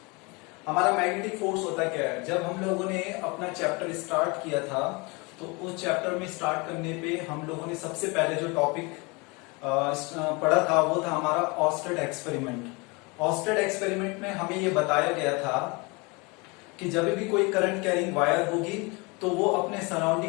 हमारा magnetic force होता क्या है? जब हम लोगों ने अपना chapter start किया था तो उस चैप्टर में स्टार्ट करने पे हम लोगों ने सबसे पहले जो टॉपिक पढ़ा था वो था हमारा ऑस्टेड एक्सपेरिमेंट. ऑस्टेड एक्सपेरिमेंट में हमें ये बताया गया था कि जब भी कोई करंट कैरिंग वायर होगी तो वो अपने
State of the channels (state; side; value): quieter; right; 27.9 dB